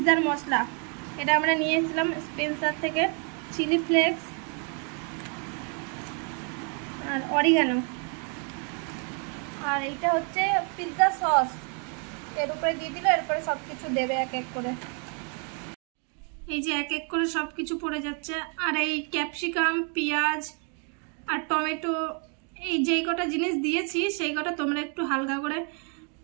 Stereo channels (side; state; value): left; quieter; 38.9 dB